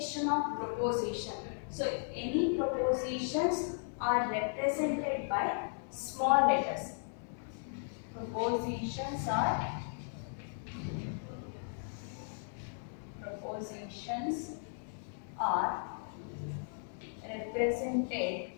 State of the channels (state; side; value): silent; right; 54 dB below the other